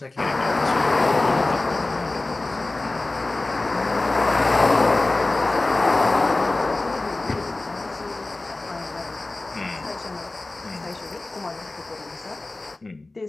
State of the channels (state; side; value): quieter; right; 3.0 dB